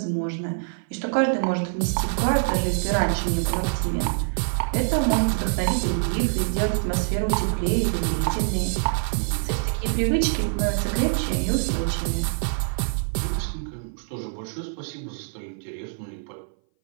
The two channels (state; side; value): silent; left; 59 dB below the other